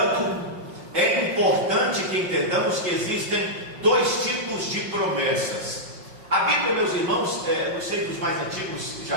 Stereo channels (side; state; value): left; late; 5.5 ms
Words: é importante que entendamos que existem dois tipos de promessas: A Bíblia, meus irmãos, não sei dos mais antigos,